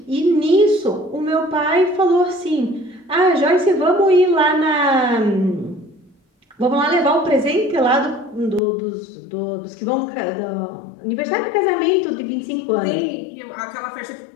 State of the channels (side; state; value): right; drops out; at 8.6 s